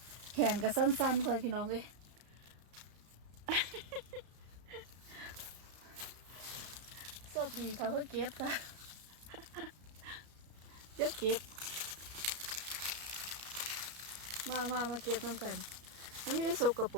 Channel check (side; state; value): left; late; 33 ms